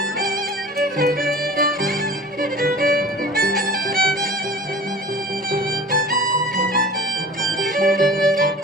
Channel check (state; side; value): normal; both; correlation 0.40